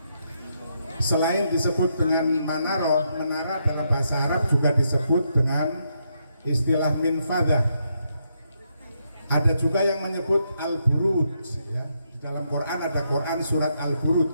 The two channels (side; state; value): both; inverted; correlation -0.79